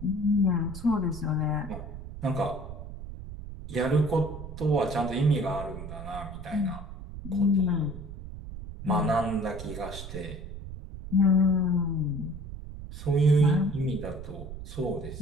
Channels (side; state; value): right; noise; rumble, 11 dB below the sound